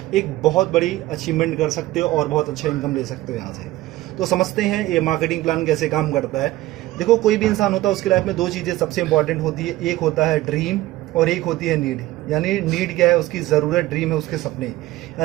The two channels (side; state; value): left; quieter; 16.9 dB